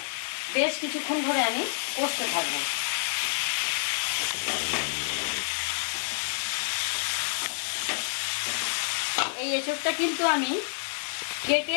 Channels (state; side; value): silent; right; digital silence